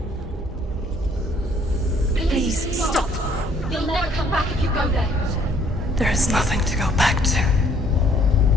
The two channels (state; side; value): normal; both; correlation 0.62